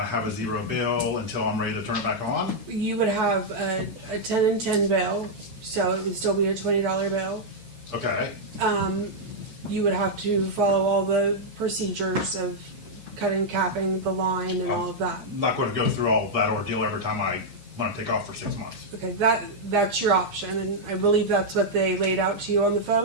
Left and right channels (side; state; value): left; late; 8.5 ms